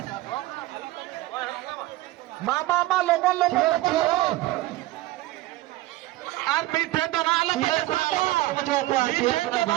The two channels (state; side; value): quieter; left; 17.5 dB